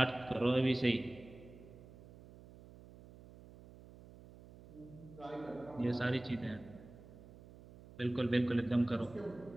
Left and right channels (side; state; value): right; noise; hum, 19 dB below the sound